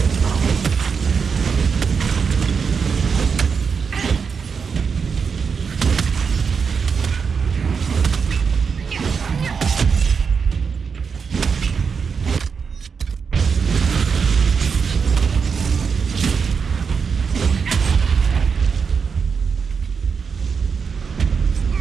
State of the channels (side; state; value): left; quieter; 5.9 dB